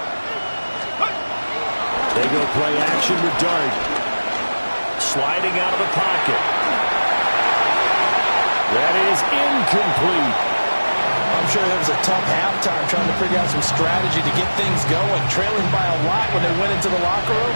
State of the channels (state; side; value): inverted; both; correlation -1.00